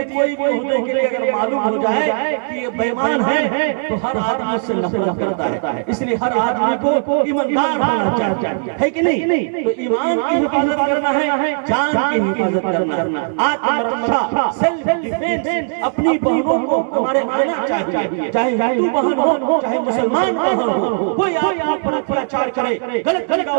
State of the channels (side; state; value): left; silent; digital silence